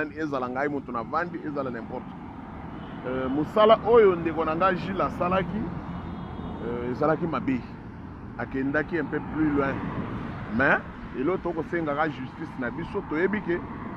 ezala ngai muntu na vandi ezala n'importe musala oyo ndeko na nga Gilles asalaki ezalaki mabe akendaki un peu plus loin mais eloko tokosengaka justice na biso toyebi ke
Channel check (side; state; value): both; identical; correlation 1.00